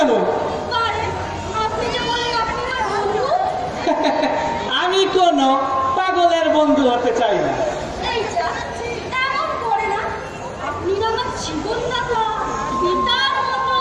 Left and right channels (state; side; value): identical; both; correlation 1.00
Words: আরে, আপনি যে বলেন আপনি আমার বন্ধু। আমি কোনো পাগলের বন্ধু হতে চাই না। এই যা, এমন করে না। আপনি না আমার জীবনদাতা, পিতার মতো।